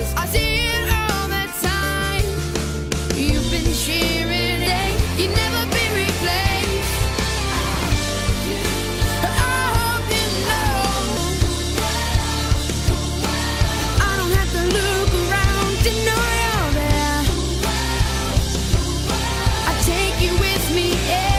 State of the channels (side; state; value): both; identical; correlation 1.00